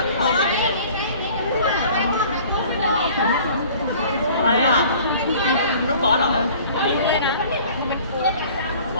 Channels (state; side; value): inverted; both; correlation -0.49